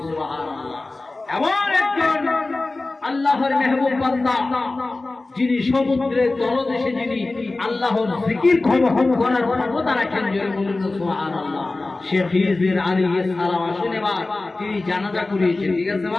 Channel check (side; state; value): right; quieter; 3.2 dB